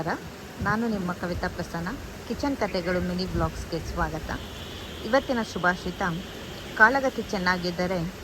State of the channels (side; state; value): both; identical; correlation 1.00